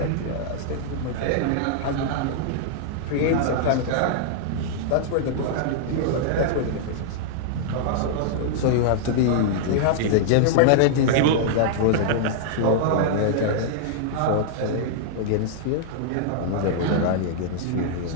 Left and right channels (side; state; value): both; different; correlation -0.01